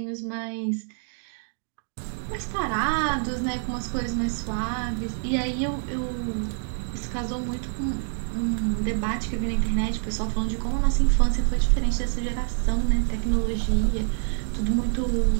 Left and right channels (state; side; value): silent; left; 61 dB below the other